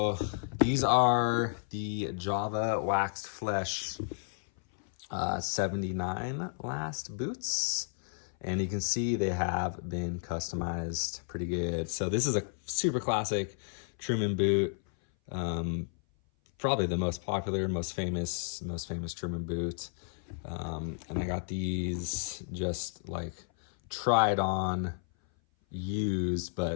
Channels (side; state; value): right; silent; 56 dB below the other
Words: these are the Java Waxed Flesh 79 last boots. And you can see they have been customized pretty good. So this is a super classic Truman boot. Probably the most popular, most famous Truman boot. And I got these just like tried on, used,